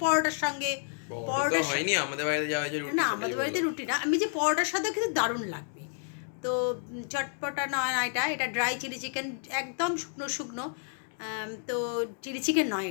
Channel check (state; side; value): silent; right; 58 dB below the other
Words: পরোটার সঙ্গে, পরোটা তো হয়নি, আমাদের বাড়িতে যাওয়া হয়েছে রুটি। না আমাদের বাড়িতে রুটি না, আমি যে পরোটার সাথে কিন্তু দারুণ লাগবে। তো চটপটা নয় না, এটা ড্রাই চিলি চিকেন, একদম শুকনো শুকনো। তো চিলি চিকেন নয়,